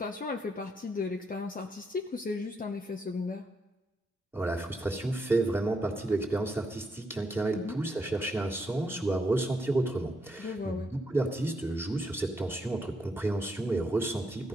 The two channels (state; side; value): normal; both; correlation 0.78